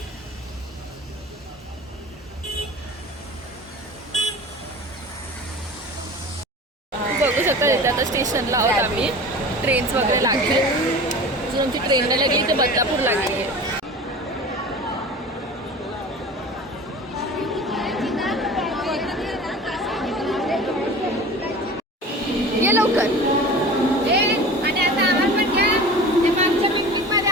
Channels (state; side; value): normal; both; correlation 0.37